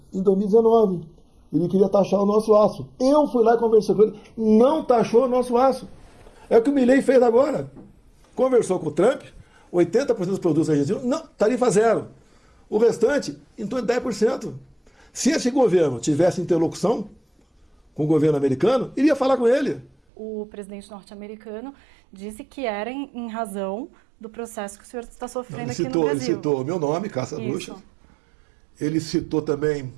em 2019. Ele queria taxar o nosso aço. Eu fui lá e conversei com ele. Não taxou o nosso aço. É o que o Milei fez agora. Conversou com o Trump. 80% dos produtos argentinos, não, tarifa zero. O restante, em torno de 10%. Se esse governo tivesse interlocução com o governo americano, iria falar com ele. O presidente norte-americano disse que era em razão do processo que o senhor está sofrendo aqui no Brasil. Ele citou o meu nome, Caça Bruxas. Ele citou também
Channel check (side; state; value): left; drops out; at 19.9 s